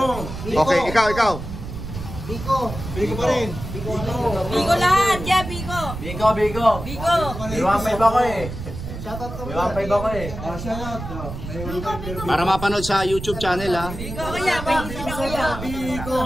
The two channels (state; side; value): noise; right; rumble, 9 dB below the sound